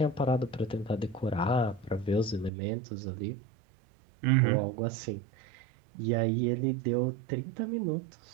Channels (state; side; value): drops out; left; at 2.5 s